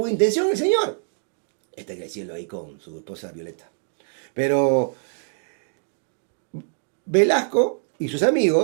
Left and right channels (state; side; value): silent; left; digital silence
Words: intención el señor. Está creciendo ahí con su esposa Violeta. Pero Velasco y sus